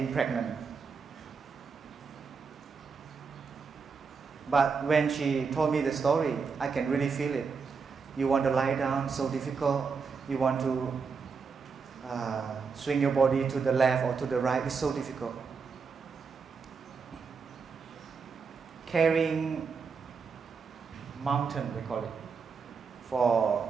pregnant. But when she told me the story, I can really feel it. You want to lie down, so difficult. You want to swing your body to the left or to the right, it's so difficult. Carrying mountain, we call it, for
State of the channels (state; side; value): quieter; left; 5.3 dB